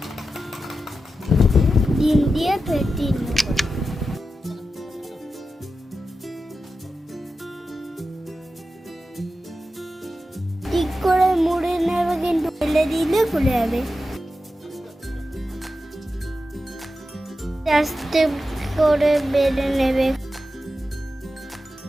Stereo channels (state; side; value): normal; both; correlation 0.91